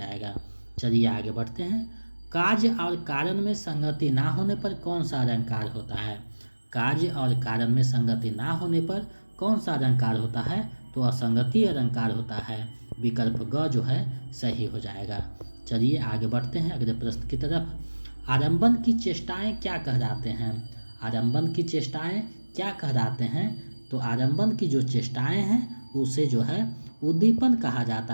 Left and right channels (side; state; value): both; inverted; correlation -1.00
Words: चलिए आगे बढ़ते हैं। कार्य और कारण में संगति ना होने पर कौन सा अलंकार होता है? कार्य और कारण में संगति ना होने पर कौन सा अलंकार होता है? तो असंगति अलंकार होता है। विकल्प ग जो है सही हो जाएगा। चलिए आगे बढ़ते हैं अगले प्रश्न की तरफ। आरंभन की चेष्टाएं क्या कहलाते हैं? आरंभन की चेष्टाएं क्या कहलाते हैं? तो आरंभन की जो चेष्टाएं हैं उसे जो है उद्दीपन कहा